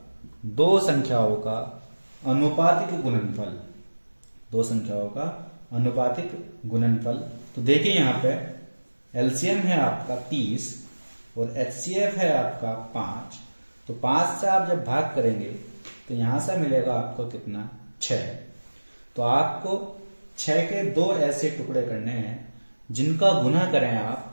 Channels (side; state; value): both; inverted; correlation -1.00